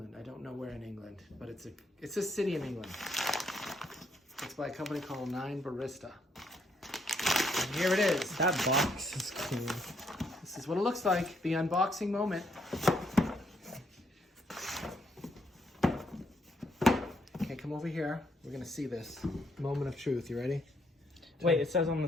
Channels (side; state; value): both; normal; correlation 0.72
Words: don't know where in England, but it's a city in England. It's by a company called My9Barista. And here it is. That box is cool. This is what it looks like, the unboxing moment. Okay, come over here. We're gonna see this moment of truth. You ready? Wait, it says on the